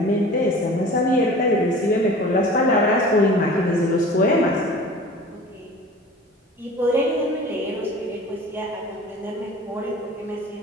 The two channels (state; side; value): normal; both; correlation 0.41